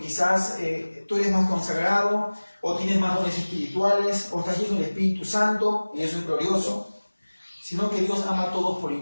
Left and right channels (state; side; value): inverted; both; correlation -1.00